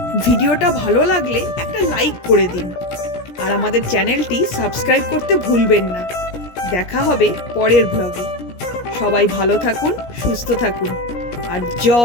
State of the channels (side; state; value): right; late; 17 ms